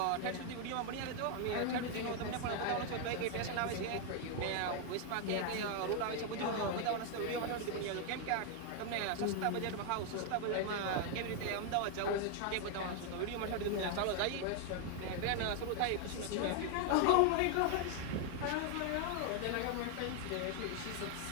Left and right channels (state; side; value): different; both; correlation 0.00